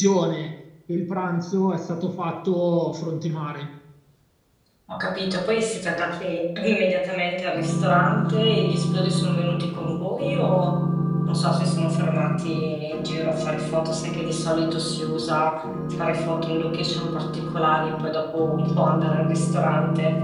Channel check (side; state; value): both; identical; correlation 1.00